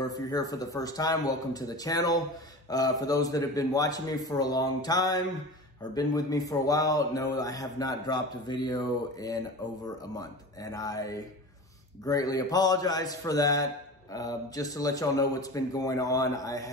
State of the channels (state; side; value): normal; both; correlation 0.33